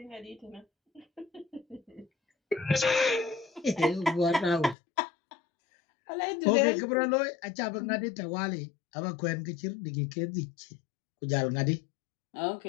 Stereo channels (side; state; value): right; drops out; at 4.8 s